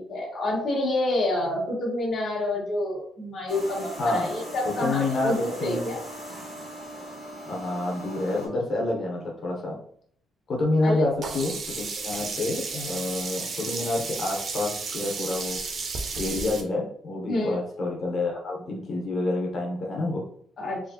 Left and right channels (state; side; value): normal; both; correlation 0.77